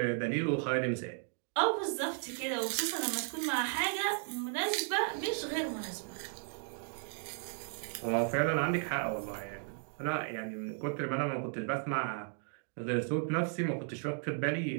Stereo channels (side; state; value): left; silent; 54 dB below the other